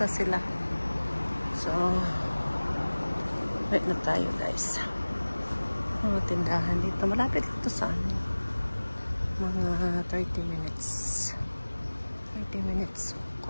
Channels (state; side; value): inverted; both; correlation -1.00